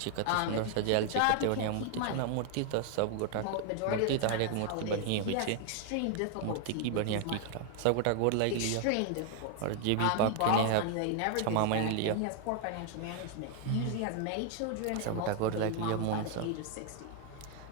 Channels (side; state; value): both; different; correlation 0.00